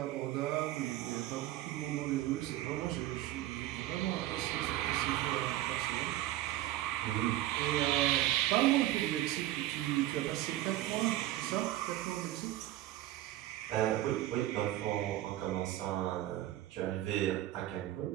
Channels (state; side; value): quieter; left; 14.7 dB